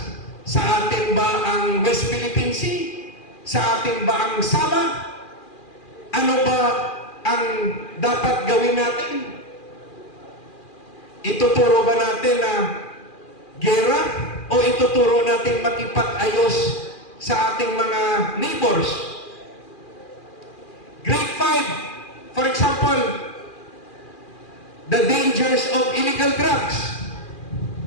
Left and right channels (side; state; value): right; late; 2.4 ms